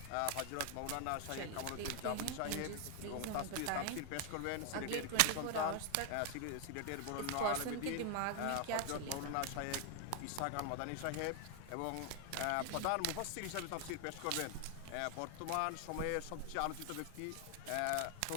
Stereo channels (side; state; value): both; different; correlation 0.00